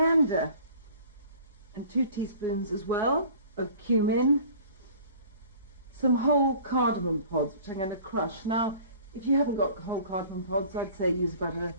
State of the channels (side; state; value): both; inverted; correlation -0.47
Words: and 2 teaspoons as well of cumin. Some whole cardamom pods, which I'm going to crush. Now, if you haven't got whole cardamom pods, I'd say use about a